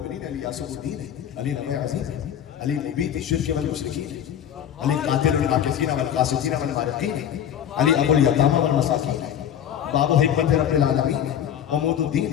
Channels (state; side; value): quieter; right; 9.7 dB